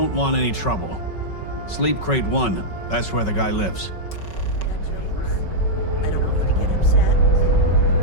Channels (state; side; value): late; right; 5.3 ms